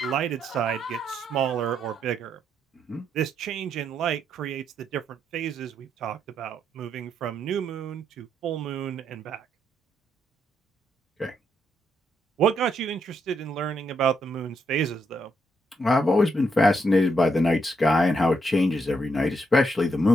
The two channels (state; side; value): normal; both; correlation 0.77